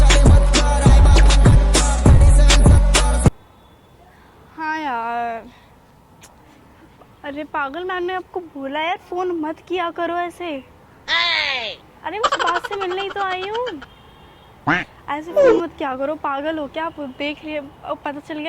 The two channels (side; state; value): both; identical; correlation 1.00